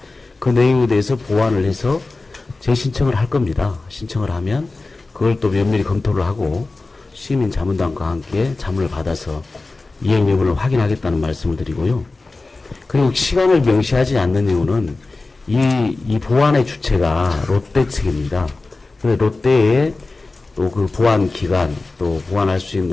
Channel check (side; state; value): right; quieter; 3.4 dB